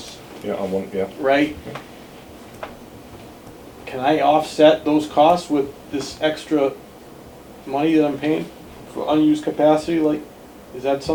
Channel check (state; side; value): identical; both; correlation 1.00